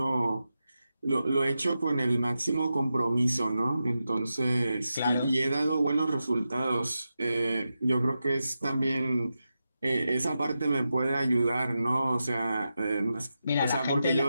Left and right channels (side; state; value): both; inverted; correlation -0.90